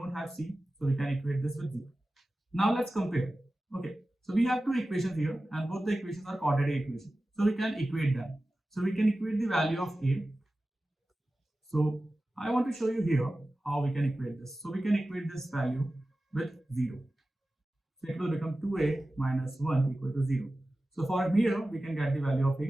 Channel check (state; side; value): normal; both; correlation 0.95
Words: have c, so we can equate this with 0. Now let's compare. Okay, so we have two equations here and both the equations are quadratic equations. So we can equate them. So we can equate the value of a. So I want to show you here how we can equate this. So we can equate this value with 0. So it will become 2a minus 1 equal to 0. So for here, we can get the value of